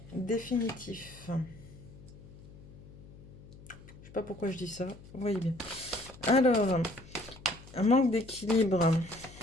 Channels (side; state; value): left; noise; hum, 19 dB below the sound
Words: définitif. Je sais pas pourquoi je dis ça, vous voyez bien. Alors, un manque d'équilibre.